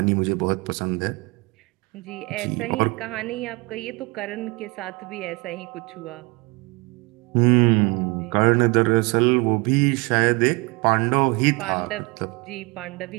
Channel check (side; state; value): left; quieter; 26.8 dB